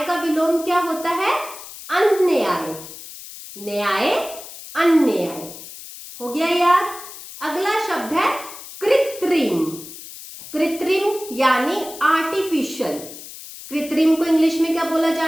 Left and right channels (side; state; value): left; noise; hiss, 14 dB below the sound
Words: का विलोम क्या होता है? अन्याय। न्याय, अन्याय। हो गया याद। अगला शब्द है कृत्रिम। कृत्रिम यानी आर्टिफिशियल। कृत्रिम को इंग्लिश में क्या बोला